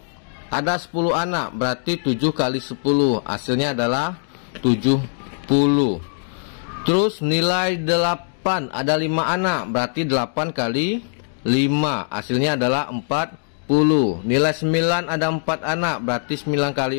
ada 10 anak. Berarti 7 kali 10, hasilnya adalah 70. Terus nilai 8, ada 5 anak, berarti 8 kali 5, hasilnya adalah 40. Nilai 9 ada 4 anak, berarti 9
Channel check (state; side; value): silent; right; digital silence